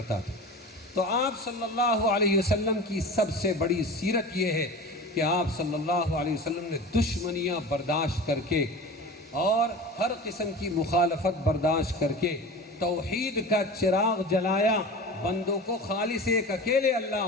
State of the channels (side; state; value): both; normal; correlation 0.33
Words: تھا. تو آپ صلی اللہ علیہ وسلم کی سب سے بڑی سیرت یہ ہے کہ آپ صلی اللہ علیہ وسلم نے دشمنیاں برداشت کر کے اور ہر قسم کی مخالفت برداشت کر کے توحید کا چراغ جلایا, بندوں کو خالص ایک اکیلے اللہ